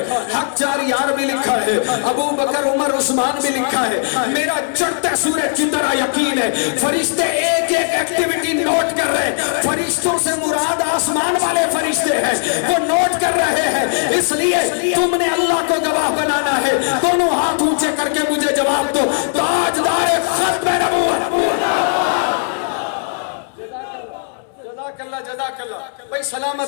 حق جار یار بھی لکھا ہے، ابو بکر عمر عثمان بھی لکھا ہے، میرا چڑھتے سورج کی طرح یقین ہے۔ فرشتے ایک ایک ایکٹیویٹی نوٹ کر رہے ہیں، فرشتوں سے مراد آسمان والے فرشتے ہیں، وہ نوٹ کر رہے ہیں، اس لیے تم نے اللہ کو گواہ بنانا ہے۔ دونوں ہاتھ اونچے کر کے مجھے جواب دو، تاجدار ختم نبوت۔ جزاک اللہ۔ بھئی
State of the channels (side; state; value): right; silent; 68 dB below the other